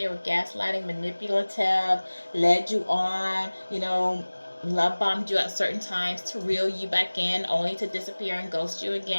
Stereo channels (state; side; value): inverted; both; correlation -1.00